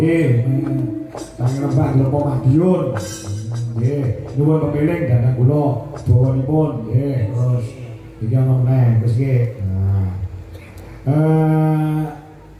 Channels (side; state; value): both; identical; correlation 1.00